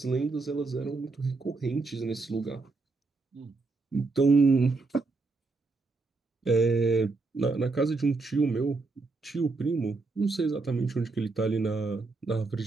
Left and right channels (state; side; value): quieter; left; 3.7 dB